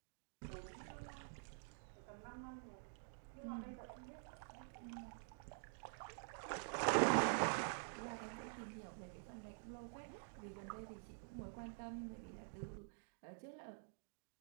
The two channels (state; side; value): silent; left; digital silence